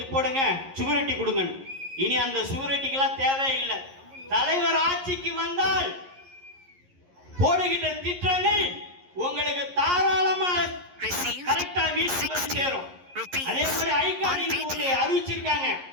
போடுங்க, சுவரட்டி கொடுங்க. இனி அந்த சுவரட்டிக்கெல்லாம் தேவையில்லை. தலைவர் ஆட்சிக்கு வந்தால் போடுகின்ற திட்டங்கள் உங்களுக்கு தாராளமா கரெக்டா வீட்டுக்கு வந்து சேரும். அதே மாதிரி ஐகார்டு அறிவிச்சிருக்காங்க.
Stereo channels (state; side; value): late; left; 11 ms